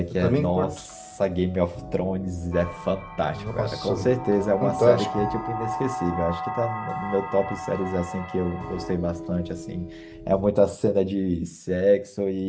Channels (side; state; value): both; identical; correlation 1.00